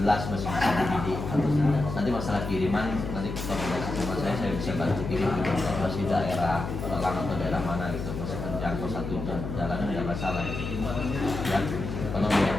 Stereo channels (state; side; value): noise; left; hum, 6 dB below the sound